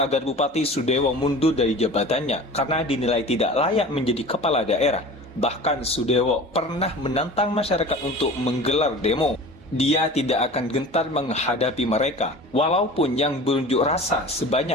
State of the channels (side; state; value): both; normal; correlation 0.38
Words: Bupati Sudewo mundur dari jabatannya karena dinilai tidak layak menjadi kepala daerah. Bahkan Sudewo pernah menantang masyarakat untuk menggelar demo. Dia tidak akan gentar menghadapi mereka, walaupun yang berunjuk rasa